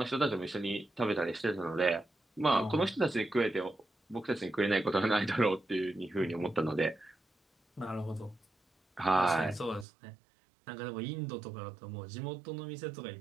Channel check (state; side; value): drops out; left; at 9.9 s